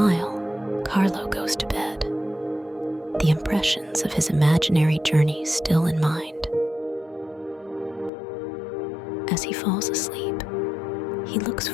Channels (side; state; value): right; drops out; at 8.1 s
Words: Carlo goes to bed, the impressions of his imaginary journey still in mind. As he falls asleep, he looks